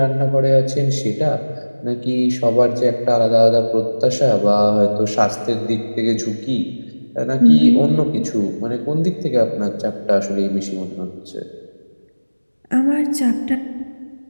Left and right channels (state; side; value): inverted; both; correlation -1.00